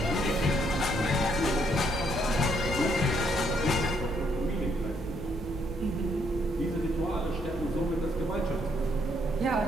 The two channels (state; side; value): normal; both; correlation 0.71